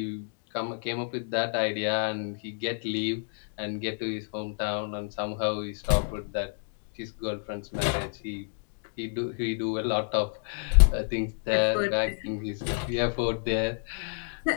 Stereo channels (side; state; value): right; silent; digital silence